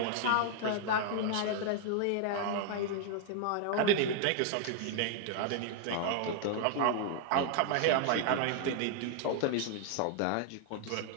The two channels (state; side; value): different; both; correlation 0.00